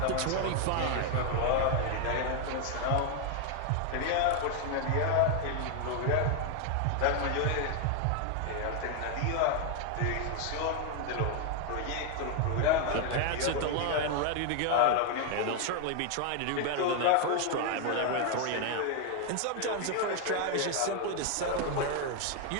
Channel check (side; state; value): both; different; correlation 0.01